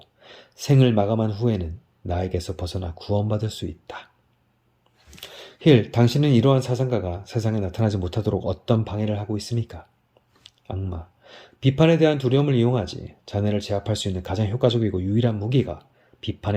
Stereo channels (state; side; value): identical; both; correlation 1.00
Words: 생을 마감한 후에는 나에게서 벗어나 구원받을 수 있다. 힐, 당신은 이러한 사상가가 세상에 나타나지 못하도록 어떤 방해를 하고 있습니까? 악마, 비판에 대한 두려움을 이용하지. 자네를 제압할 수 있는 가장 효과적이고 유일한 무기가